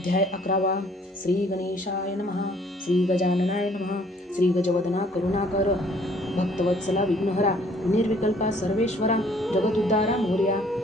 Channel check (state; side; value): normal; both; correlation 0.60